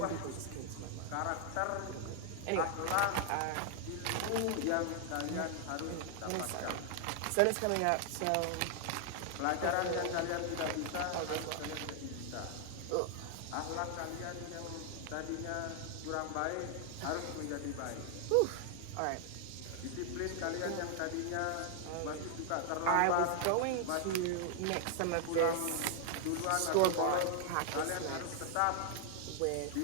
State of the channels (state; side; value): different; both; correlation 0.00